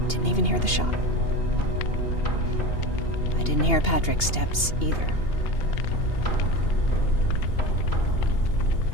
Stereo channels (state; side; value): late; right; 2.8 ms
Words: Didn't even hear the shot. I didn't hear Patrick's steps either.